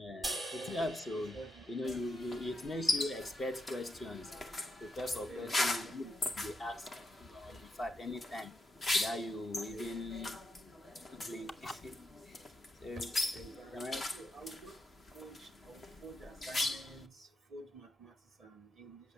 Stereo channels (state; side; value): normal; both; correlation 0.83